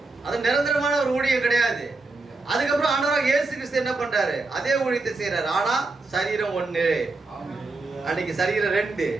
அது நிரந்தரமான ஒரு ஊழியம் கிடையாது. அதுக்கப்புறம் ஆண்டவராகிய இயேசு கிறிஸ்து என்ன பண்றாரு? அதே ஊழியத்தை செய்யறாரு. ஆனா சரீரம் ஒண்ணு. அன்னைக்கு சரீரம் 2,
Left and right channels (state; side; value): quieter; left; 3.5 dB